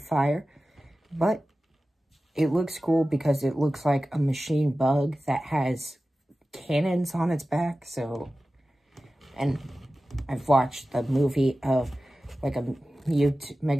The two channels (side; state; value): both; normal; correlation 0.95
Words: but it looks cool because it looks like a machine bug that has cannons on its back. And I've watched the movie of like a